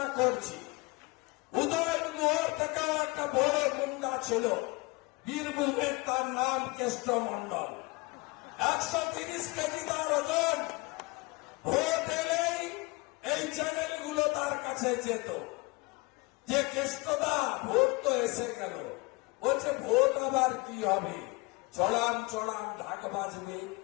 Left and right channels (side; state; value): right; quieter; 25.5 dB